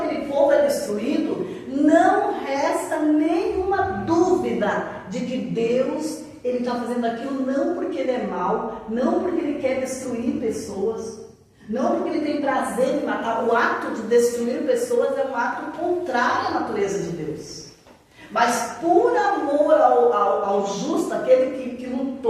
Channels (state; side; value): identical; both; correlation 1.00